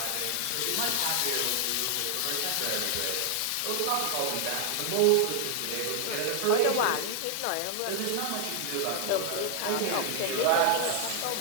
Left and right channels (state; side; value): different; both; correlation 0.00